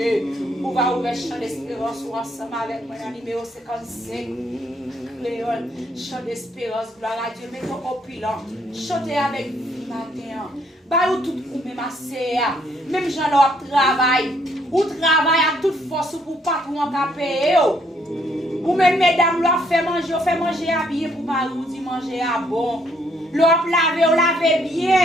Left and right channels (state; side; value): normal; both; correlation 0.69